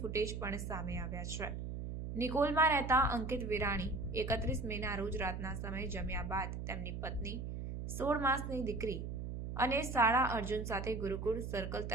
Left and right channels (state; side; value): noise; right; hum, 5 dB below the sound